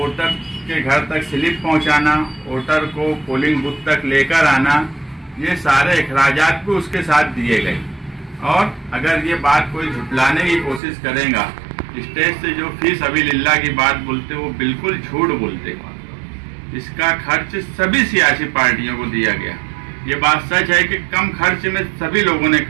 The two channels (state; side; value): drops out; left; at 10.8 s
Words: के घर तक स्लिप पहुंचाना, वोटर को पोलिंग बूथ तक लेकर आना, ये सारे अखराजात भी उसके साथ दिए गए। और अगर ये बात कोई झुटलाने की कोशिश करेगा, स्टेज से जो फीस अभी लिल्ला की बात बोलते वो बिल्कुल झूठ बोलते। इसका खर्च सभी सियासी पार्टियों को दिया गया। ये बात सच है कि कम खर्च में सभी लोगों ने